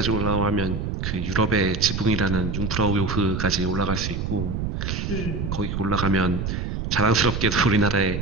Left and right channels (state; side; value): noise; right; rumble, 3 dB below the sound